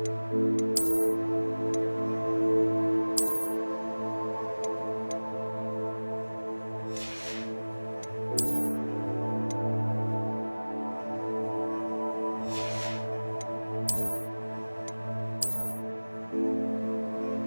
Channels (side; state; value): both; inverted; correlation -1.00